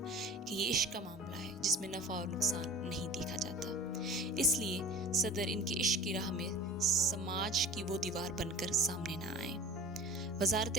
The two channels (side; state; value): both; normal; correlation 0.39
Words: کہ یہ عشق کا معاملہ ہے جس میں نفع اور نقصان نہیں دیکھا جاتا، اس لیے صدر ان کے عشق کی راہ میں سماج کی وہ دیوار بن کر سامنے نہ آئیں۔ وزارت